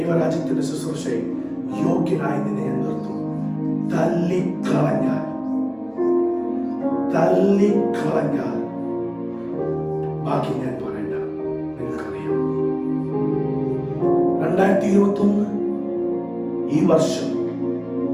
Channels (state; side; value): identical; both; correlation 1.00